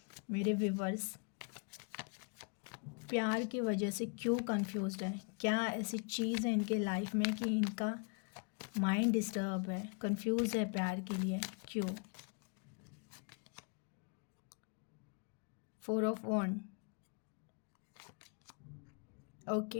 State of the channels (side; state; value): right; quieter; 37.6 dB